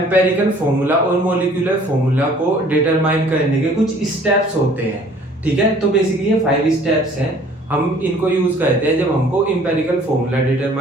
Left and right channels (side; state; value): both; normal; correlation 0.54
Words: फॉर्मूला और मॉलिक्यूलर फॉर्मूला को डिटरमाइन करने के कुछ स्टेप्स होते हैं। ठीक है, तो बेसिकली ये 5 स्टेप्स हैं, हम इनको यूज करते हैं जब हमको इंपेरिकल फॉर्मूला